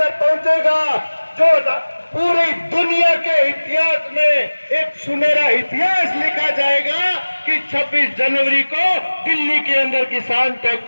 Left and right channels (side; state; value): both; inverted; correlation -1.00